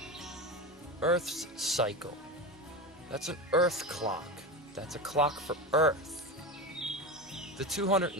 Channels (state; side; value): normal; both; correlation 0.21